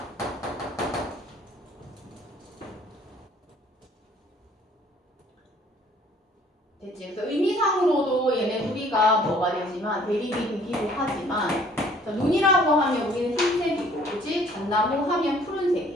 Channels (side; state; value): both; normal; correlation 0.57